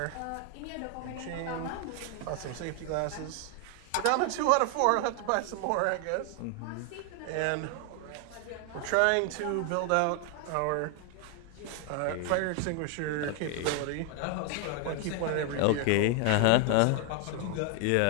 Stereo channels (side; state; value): both; different; correlation 0.00